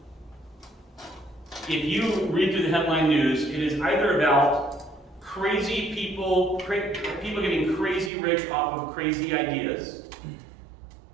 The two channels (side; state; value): left; drops out; at 8.1 s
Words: If you read through the headline news, it is either about crazy people getting crazy rich off of crazy ideas,